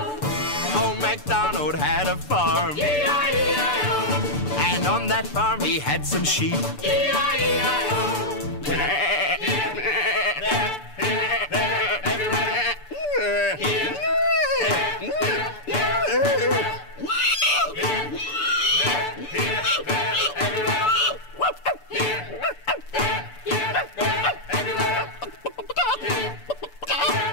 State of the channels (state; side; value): late; right; 6.9 ms